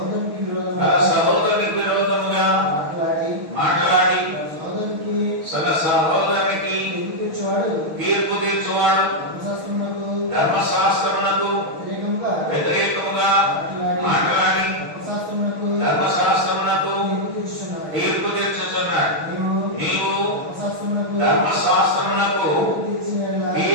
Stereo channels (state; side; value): late; left; 6.4 ms